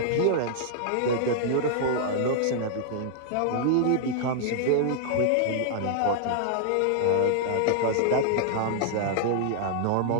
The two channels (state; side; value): different; both; correlation -0.01